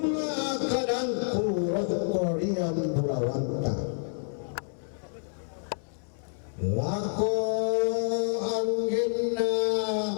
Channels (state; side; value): silent; right; digital silence